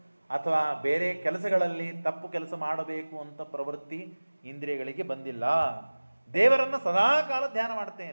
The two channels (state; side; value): inverted; both; correlation -1.00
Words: ಅಥವಾ ಬೇರೆ ಕೆಲಸಗಳಲ್ಲಿ ತಪ್ಪು ಕೆಲಸ ಮಾಡಬೇಕು ಅಂತ ಪ್ರವೃತ್ತಿ ಇಂದ್ರಿಯಗಳಿಗೆ ಬಂದಿಲ್ಲ. ದೇವರನ್ನು ಸದಾ ಕಾಲ ಧ್ಯಾನ